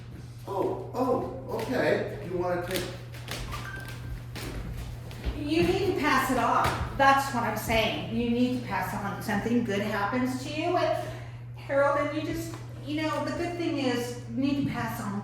Oh, okay. You want to take... You need to pass it on. That's what I'm saying. You need to pass on. Something good happens to you, and Harold, and you just, you know, the good thing is you need to pass on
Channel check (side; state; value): both; identical; correlation 1.00